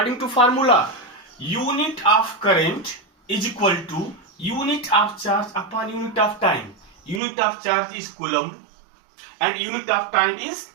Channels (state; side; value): drops out; left; at 7.2 s